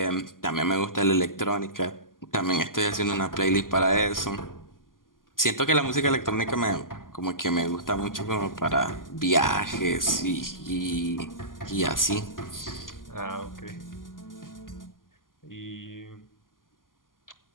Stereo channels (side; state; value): right; late; 0.90 ms